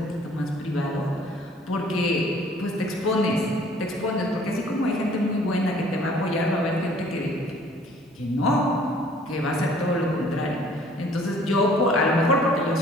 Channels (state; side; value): normal; both; correlation 0.55